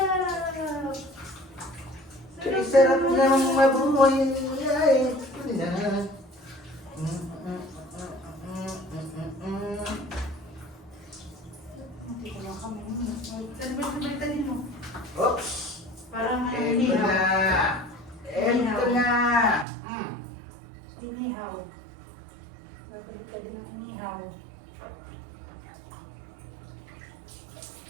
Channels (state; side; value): drops out; left; at 19.7 s